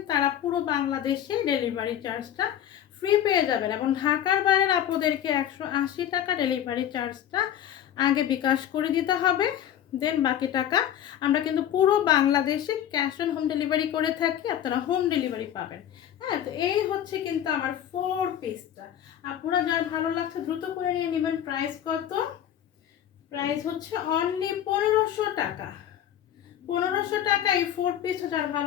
তারা পুরো বাংলাদেশে ডেলিভারি চার্জটা ফ্রি পেয়ে যাবেন, এবং ঢাকার বাইরের আপনাদেরকে 180 টাকা ডেলিভারি চার্জটা আগে বিকাশ করে দিতে হবে, দেন বাকি টাকা আমরা কিন্তু পুরো বাংলাদেশে ক্যাশ অন হোম ডেলিভারি করে থাকি, আপনারা হোম ডেলিভারি পাবেন। হ্যাঁ, তো এই হচ্ছে কিন্তু আমার 4 পিসটা। আপনারা যার ভালো লাগছে দ্রুত করে নিয়ে নেবেন। প্রাইস কত? প্রাইস হচ্ছে অনলি 1500 টাকা। 1500 টাকা এই 4 পিস, যার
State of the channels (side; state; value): right; quieter; 10.5 dB